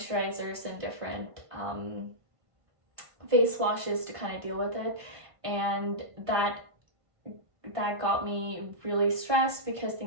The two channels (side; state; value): left; late; 1.5 ms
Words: and different face washes to kind of deal with it. And that got me really stressed because